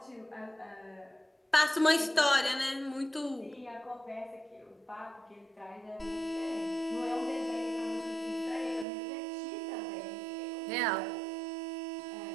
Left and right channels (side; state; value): left; drops out; at 8.8 s